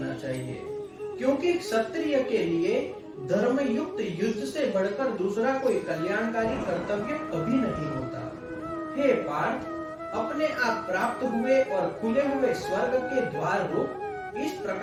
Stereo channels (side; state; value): both; identical; correlation 1.00